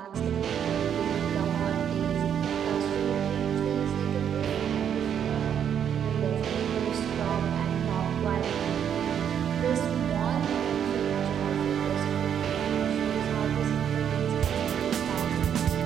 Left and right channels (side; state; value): left; quieter; 8.7 dB